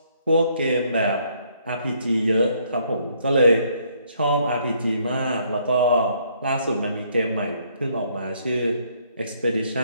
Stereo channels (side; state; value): both; inverted; correlation -0.68